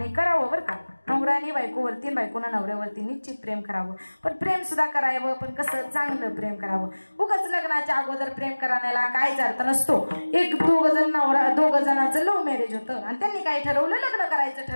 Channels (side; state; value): both; inverted; correlation -1.00